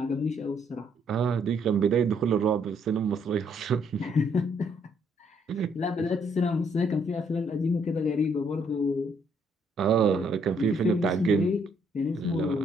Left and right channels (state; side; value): normal; both; correlation 0.69